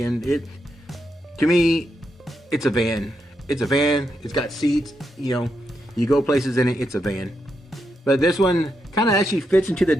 To me, it's a van. It's a van. It's got seats. You know, you go places in it. It's a van. But this one kind of actually fits into the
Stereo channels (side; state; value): both; normal; correlation 0.83